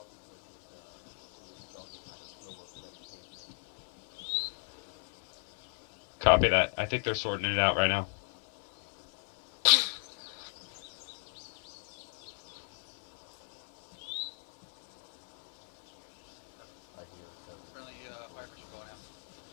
Copy that. I think they're sorting it out right now.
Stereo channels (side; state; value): right; silent; digital silence